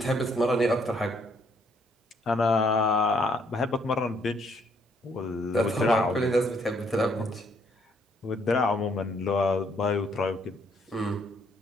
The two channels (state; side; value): normal; both; correlation 0.68